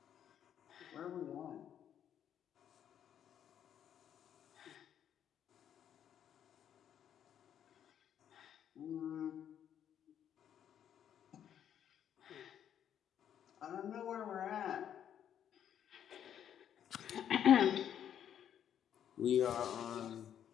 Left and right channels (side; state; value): right; quieter; 9.6 dB